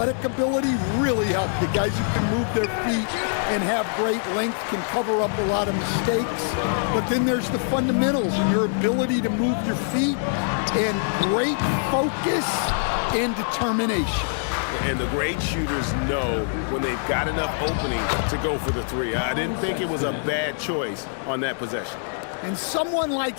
ability really help. The guys who can move their feet and have great length can cover up a lot of mistakes. But then there's the fundamentals and your ability to move your feet and great focus and determination. And the great shooters know when they've got enough opening to go for the three. I didn't think it was a bad choice on that possession. And someone like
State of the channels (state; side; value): silent; right; digital silence